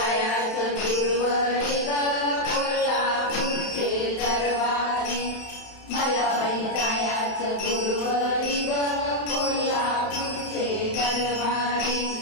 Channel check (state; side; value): late; right; 31 ms